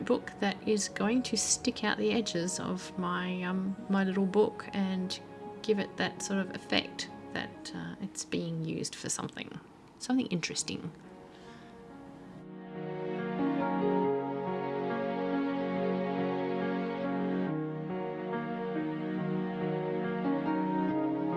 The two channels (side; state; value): both; identical; correlation 1.00